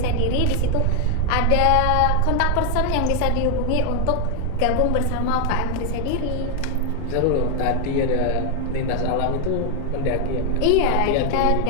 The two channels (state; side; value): different; both; correlation 0.00